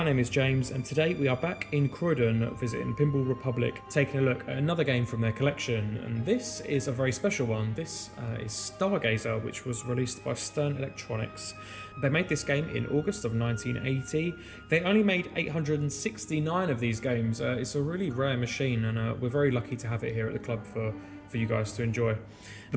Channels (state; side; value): identical; both; correlation 1.00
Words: name is James, and today we are back in Croydon visiting Pinball Republic, taking a look at another game from their collection. And this is a very special one. This is Stargazer, which was released by Stern Electronics. They made this game in August of 1980. They only made 869 of these games. It's a really rare machine, and we're very lucky to have it here at the club for you guys to enjoy. The